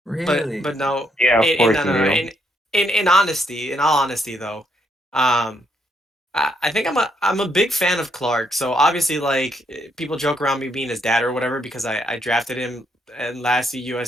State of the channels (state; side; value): normal; both; correlation 0.74